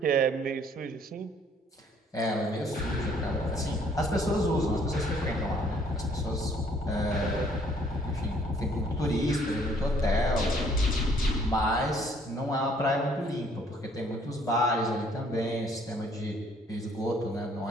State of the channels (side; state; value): both; normal; correlation 0.62